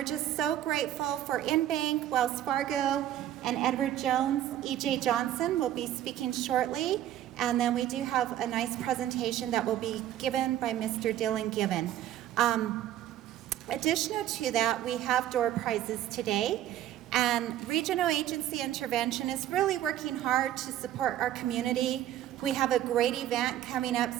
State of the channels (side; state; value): left; quieter; 12.2 dB